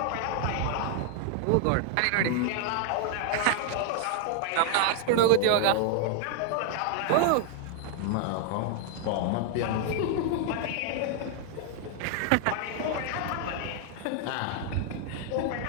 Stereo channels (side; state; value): both; different; correlation 0.00